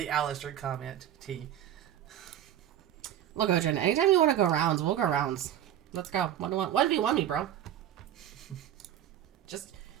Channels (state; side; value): quieter; left; 11.1 dB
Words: Alastor comment, T. Look, Odrin, anytime you want to go rounds, we'll go rounds. Let's go. What do you want me, bro?